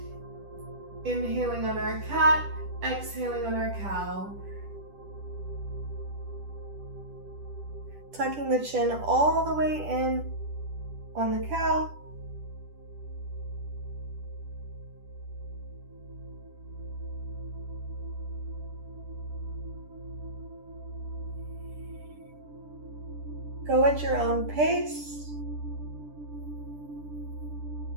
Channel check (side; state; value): left; late; 10 ms